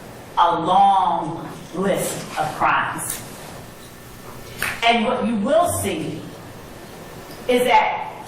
a long list of crimes. And what you will see is that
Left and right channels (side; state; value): both; identical; correlation 1.00